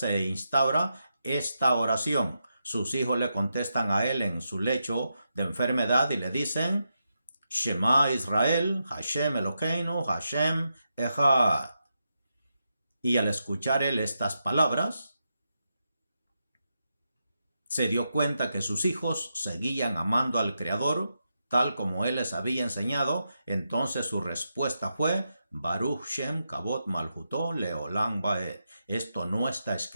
instaura esta oración. Sus hijos le contestan a él en su lecho de enfermedad y le dicen Shema Israel, Hashem Elokeinu, Hashem Echad. Y al escuchar él estas palabras, se dio cuenta que sus hijos seguían amando al Creador tal como él les había enseñado. Entonces su respuesta fue Baruch Shem Kavod Malchuto Leolam Baed. Esto no está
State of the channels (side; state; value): both; inverted; correlation -0.86